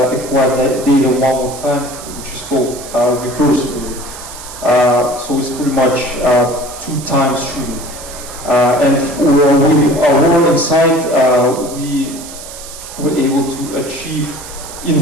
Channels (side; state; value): right; noise; hiss, 13 dB below the sound